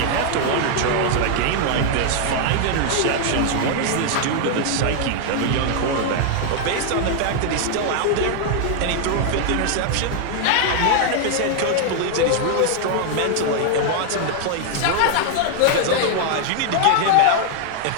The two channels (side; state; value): both; different; correlation 0.00